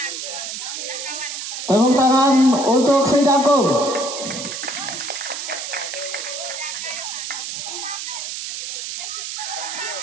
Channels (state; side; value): noise; right; hiss, 6 dB below the sound